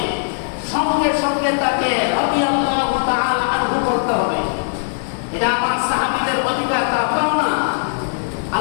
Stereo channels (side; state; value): right; silent; digital silence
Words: সঙ্গে সঙ্গে তাকে রাদিয়াল্লাহু তাআলা আনহু করতে হবে। এটা আমার সাহাবীদের অধিকার, তা পাও না।